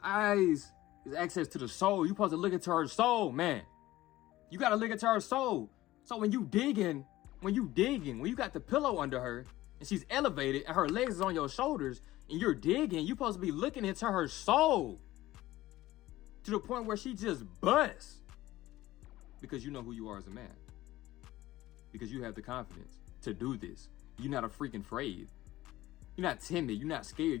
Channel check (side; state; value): right; quieter; 16.4 dB